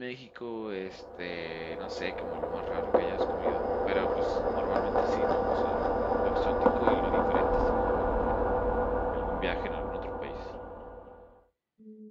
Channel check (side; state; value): both; identical; correlation 1.00